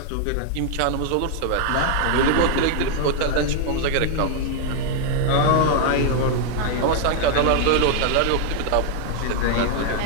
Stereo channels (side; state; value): both; different; correlation 0.00